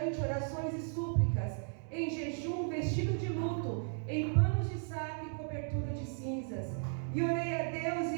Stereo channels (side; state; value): left; silent; 54 dB below the other